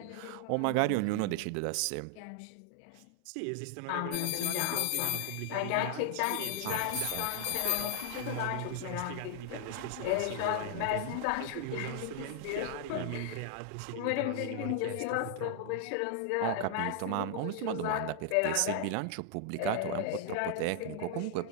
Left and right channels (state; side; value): different; both; correlation 0.00